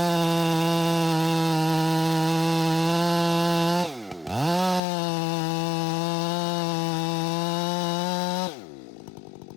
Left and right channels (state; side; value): drops out; right; at 4.8 s